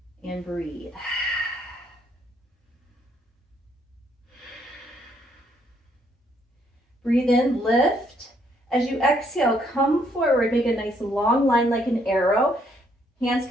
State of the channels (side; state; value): both; normal; correlation 0.70